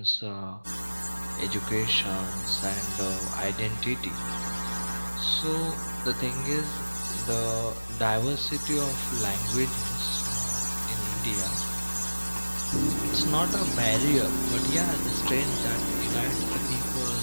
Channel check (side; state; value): both; inverted; correlation -1.00